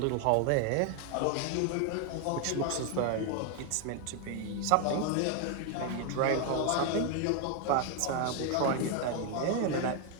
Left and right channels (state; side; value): different; both; correlation 0.01